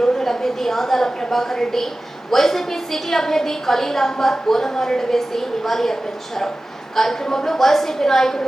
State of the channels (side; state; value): both; normal; correlation 0.96